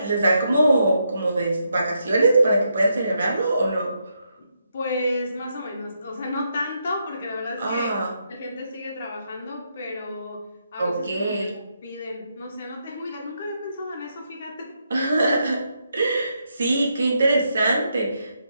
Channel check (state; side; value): inverted; both; correlation -0.80